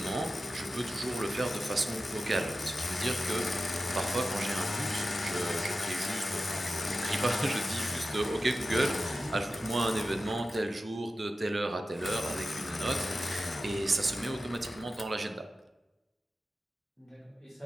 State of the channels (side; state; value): both; normal; correlation 0.93